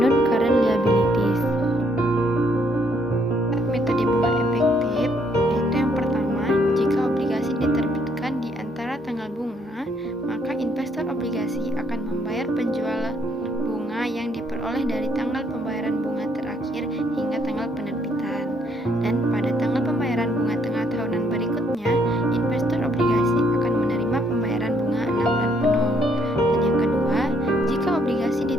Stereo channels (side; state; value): both; normal; correlation 0.69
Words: liabilities. Metode bunga efektif yaitu yang pertama, jika obligasi diterbitkan di antara tanggal bunga, maka investor obligasi akan membayar penjual bunga yang diperoleh dari tanggal pembayaran bunga terakhir hingga tanggal penerbitan. Dan pada tanggal pembayaran bunga tengah tahunan berikutnya, investor obligasi akan menerima pembayaran bunga 6 bulan penuh. Dan yang kedua, jika obligasi